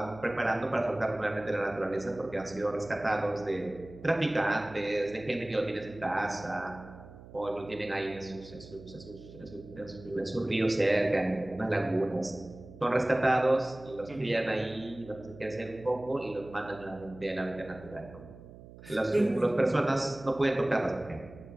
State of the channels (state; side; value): noise; right; hum, 18 dB below the sound